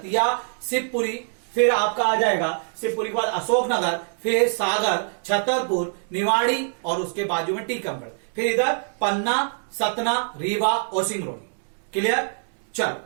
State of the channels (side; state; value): left; silent; digital silence